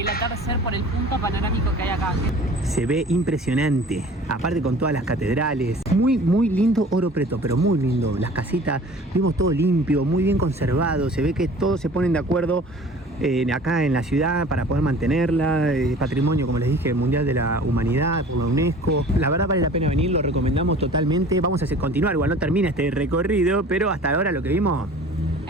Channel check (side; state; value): both; normal; correlation 0.45